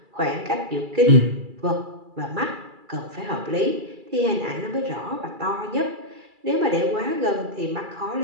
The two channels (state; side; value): late; left; 2.3 ms